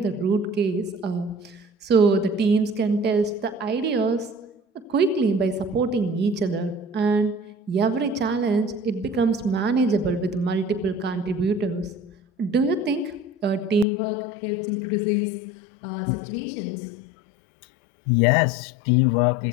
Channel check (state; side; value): drops out; right; at 13.9 s